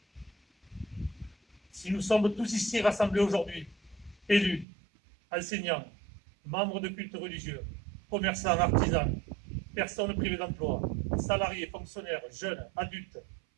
Si nous sommes tous ici rassemblés aujourd'hui, élus, enseignants, membres de cultes religieux, commerçants, artisans, personnes privées d'emploi, salariés, fonctionnaires, jeunes, adultes,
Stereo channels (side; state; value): left; drops out; at 4.7 s